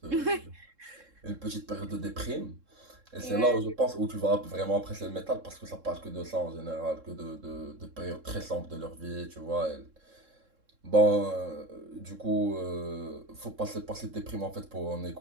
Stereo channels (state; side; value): late; left; 3.7 ms